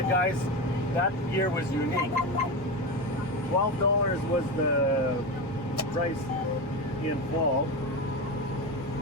guys, that year was unique. $12 was the price in fall.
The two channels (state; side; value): normal; both; correlation 0.19